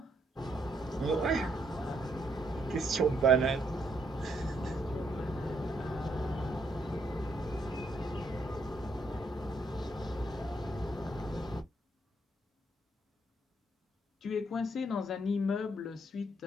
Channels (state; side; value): normal; both; correlation 0.73